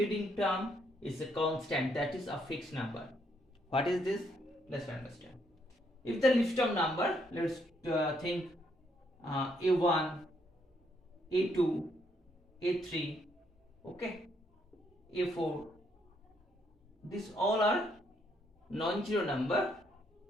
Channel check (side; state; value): both; normal; correlation 0.73